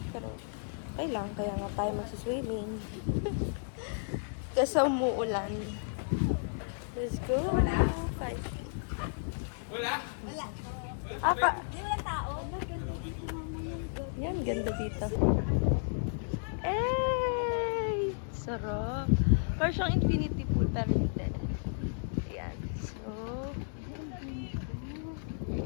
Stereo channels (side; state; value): right; silent; digital silence